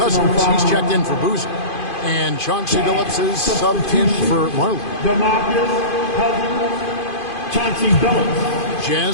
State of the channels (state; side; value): late; right; 2.5 ms